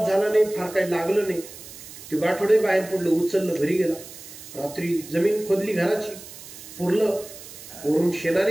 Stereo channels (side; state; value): right; noise; hiss, 15 dB below the sound